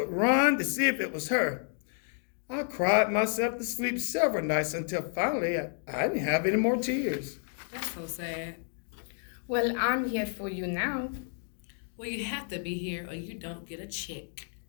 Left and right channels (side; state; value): right; silent; 57 dB below the other